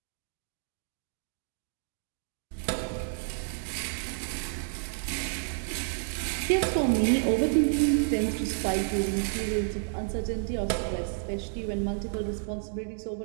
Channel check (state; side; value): silent; left; digital silence